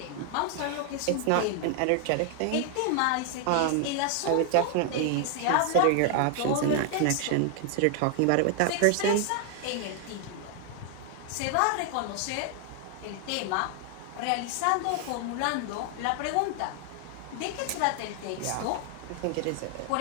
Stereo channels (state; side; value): different; both; correlation 0.00